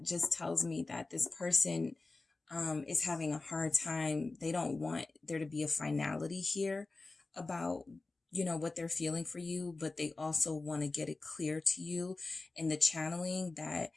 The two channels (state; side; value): quieter; right; 3.5 dB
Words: just tells me that this person is having a hard time. They don't want there to be a finality here about, you know, what they're feeling for you, but they also want to get it clear to you in the channeling that